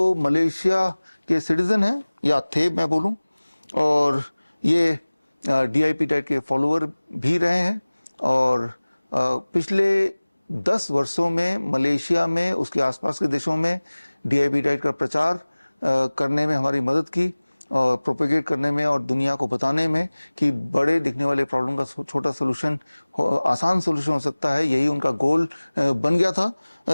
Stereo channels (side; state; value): both; inverted; correlation -1.00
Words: मलेशिया के सिटीजन हैं, या थे मैं बोलूँ, और ये DIP डाइट के फॉलोअर भी रहे हैं, और पिछले 10 वर्षों में मलेशिया में उसके आसपास के देशों में DIP डाइट का प्रचार करने में हमारी मदद की, और प्रोपेगेट करने में और दुनिया को बताने में कि बड़े दिखने वाले प्रॉब्लम का छोटा सोल्यूशन, आसान सोल्यूशन हो सकता है। यही उनका गोल बन गया